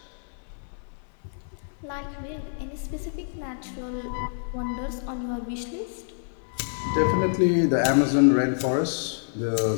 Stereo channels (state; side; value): silent; right; digital silence